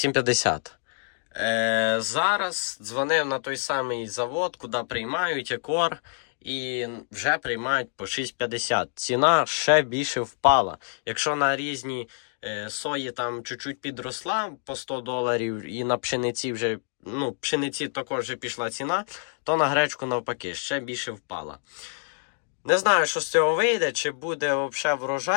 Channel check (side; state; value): right; silent; digital silence